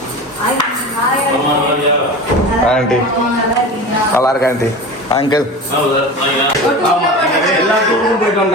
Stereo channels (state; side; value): normal; both; correlation 0.31